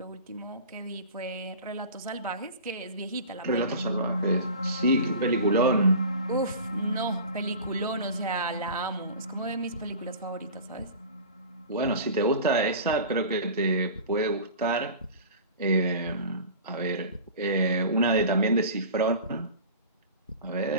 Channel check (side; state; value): both; inverted; correlation -0.37